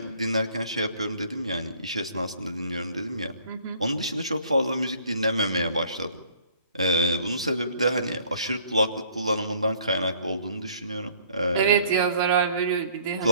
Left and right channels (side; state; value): both; inverted; correlation -0.58